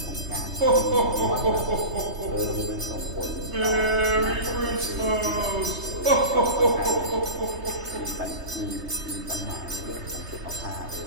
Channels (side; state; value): left; late; 3.2 ms